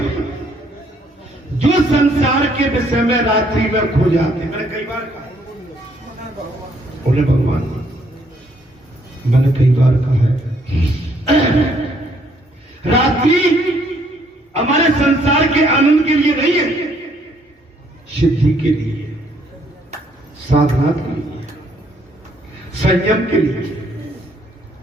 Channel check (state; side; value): normal; both; correlation 0.68